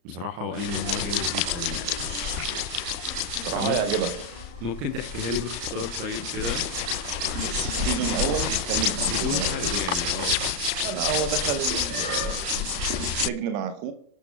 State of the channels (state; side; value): late; left; 34 ms